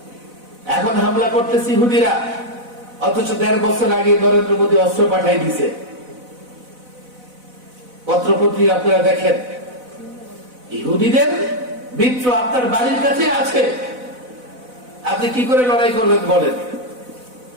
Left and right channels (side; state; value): left; late; 4.0 ms